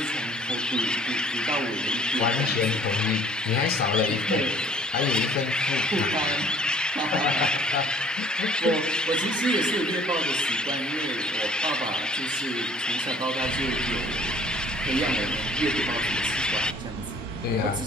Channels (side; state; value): both; normal; correlation 0.55